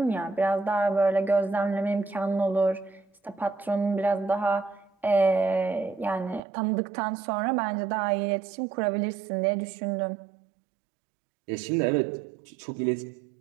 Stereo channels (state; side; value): drops out; left; at 6.4 s